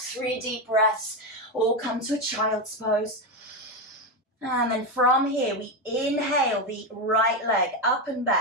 deep breaths, all come to a child's pose. And then from here, we inhale the right leg up and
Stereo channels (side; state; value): both; normal; correlation 0.11